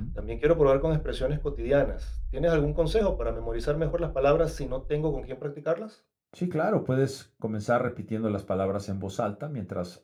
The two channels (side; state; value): both; identical; correlation 1.00